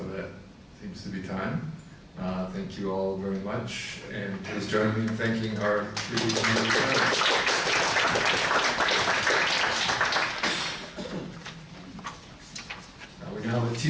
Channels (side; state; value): both; identical; correlation 1.00